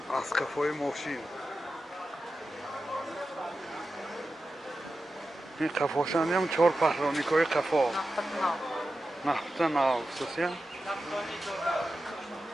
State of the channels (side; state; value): both; normal; correlation 0.92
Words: اسقفای ماشین این قفاشانی هم 4 پهرانیک های قفا نفته ناو خصوصی